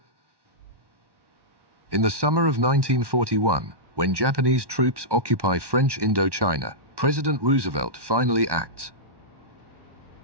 In the summer of 1941, when Japanese troops occupy French Indochina, President Roosevelt finally acts.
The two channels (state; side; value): late; left; 1.1 ms